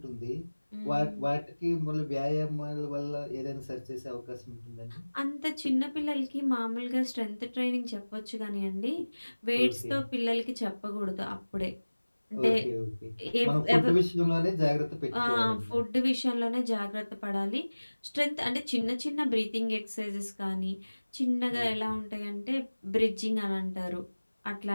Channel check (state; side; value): inverted; both; correlation -1.00